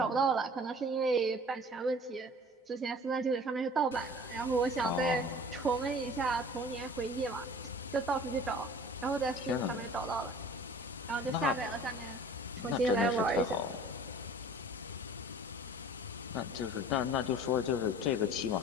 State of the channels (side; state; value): both; normal; correlation 0.46